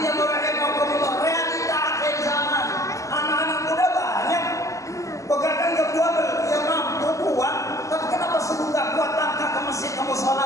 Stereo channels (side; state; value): right; late; 0.16 ms